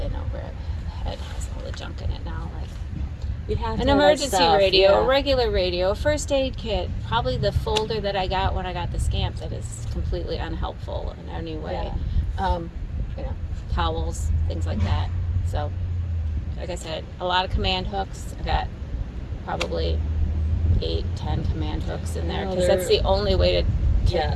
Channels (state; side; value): identical; both; correlation 1.00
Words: over the head has all the junk in it now. Like We have an emergency radio, a regular radio, a first aid kit, probably the folder that I got when I got the Scamp that is completely unhelpful in any way. Towels, things like that. So, like I said, a lot of command hooks. I got probably 8-10 command hooks in there, because that's the only way to